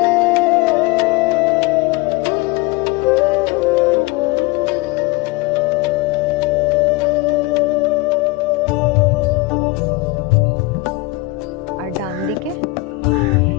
আর ডান দিকে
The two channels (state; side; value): quieter; right; 19.9 dB